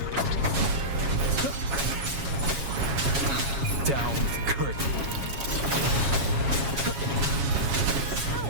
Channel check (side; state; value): left; late; 7.3 ms